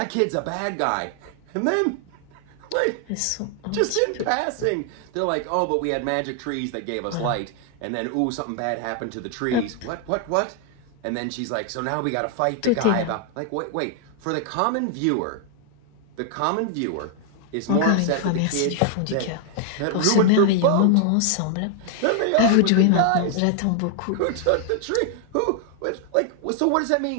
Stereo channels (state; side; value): different; both; correlation 0.00